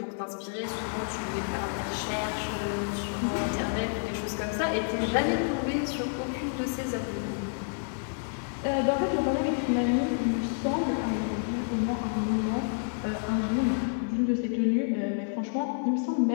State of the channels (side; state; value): right; silent; digital silence